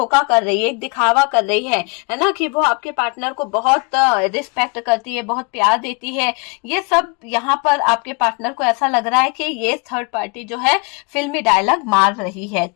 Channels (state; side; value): quieter; right; 32.1 dB